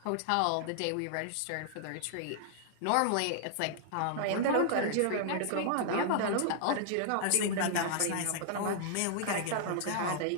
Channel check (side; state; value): both; different; correlation -0.01